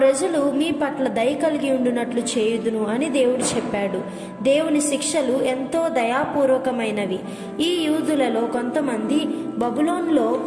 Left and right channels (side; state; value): both; identical; correlation 1.00